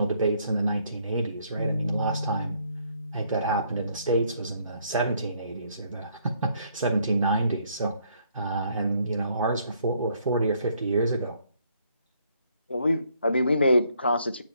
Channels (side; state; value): both; inverted; correlation -0.68